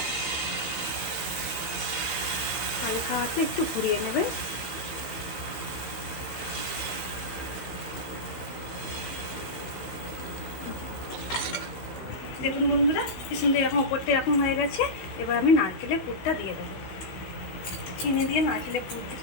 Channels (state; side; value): late; right; 16 ms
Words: হালকা হাতে একটু ঘুরিয়ে নেবেন। দেখুন বন্ধুরা কি সুন্দর এরকম ওপরটা এরকম হয়ে গেছে। এবার আমি নারকেলের পুরটা দিয়ে দেবো। চিনি দিয়ে নারকেলের পুর